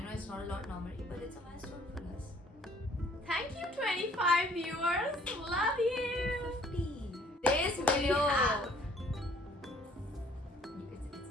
it's not a lot normally, but it's a milestone for us. Thank you, 25 viewers. Love you. 50. This video. have-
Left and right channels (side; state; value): both; normal; correlation 0.59